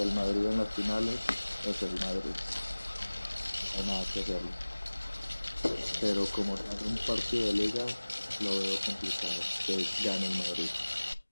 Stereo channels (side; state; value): both; inverted; correlation -1.00